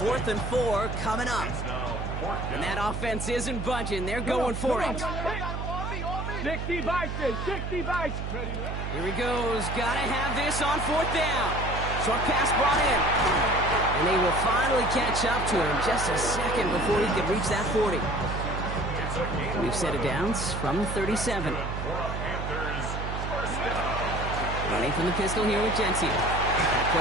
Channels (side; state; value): right; noise; hum, 4 dB below the sound